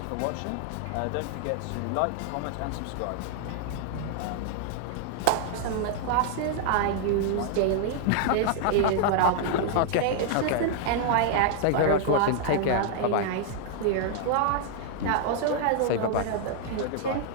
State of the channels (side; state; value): both; different; correlation 0.00